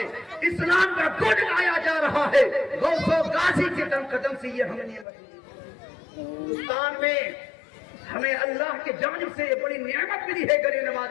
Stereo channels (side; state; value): right; drops out; at 5.1 s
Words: اسلام کا گڑ گایا جا رہا ہے۔ غوث و غازی کے قدم سے یہ ہم نے ہندوستان میں ہمیں اللہ کی جانب سے یہ بڑی نعمت ملی ہے غریب نواز